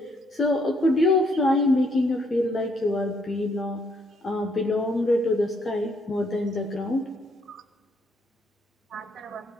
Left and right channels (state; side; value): normal; both; correlation 0.70